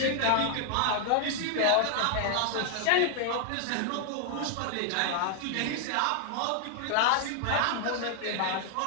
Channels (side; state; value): both; different; correlation 0.00